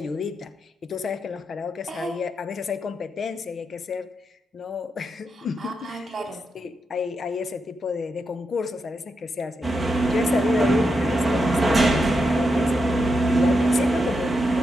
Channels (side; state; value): both; normal; correlation 0.85